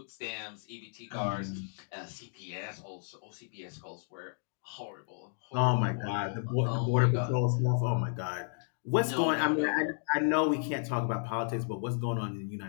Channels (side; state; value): right; silent; digital silence